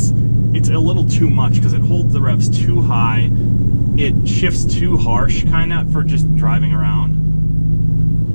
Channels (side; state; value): both; inverted; correlation -1.00